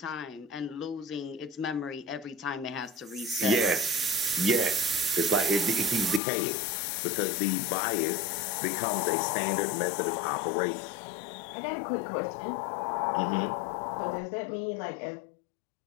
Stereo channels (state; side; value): drops out; right; at 6.2 s